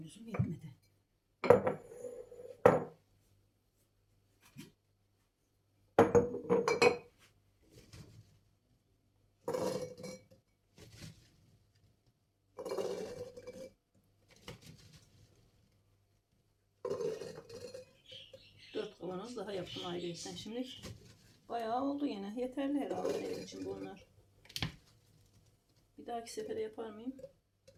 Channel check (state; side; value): identical; both; correlation 1.00